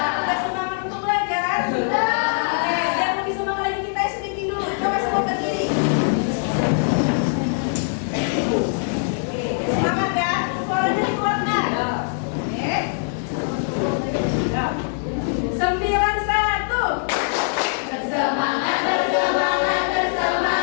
semangat untuk belajar? Oke, biar lebih semangat lagi kita speaking dulu. Coba semua berdiri. Oke, semangat ya. Suaranya dikeluarkan. Oke. 91. Bersemangat, bersemangat,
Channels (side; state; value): right; silent; 64 dB below the other